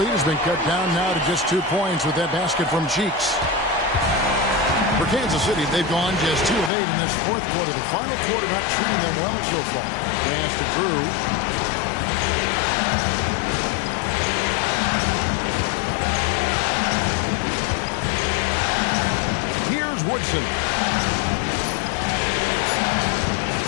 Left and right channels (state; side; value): drops out; right; at 6.7 s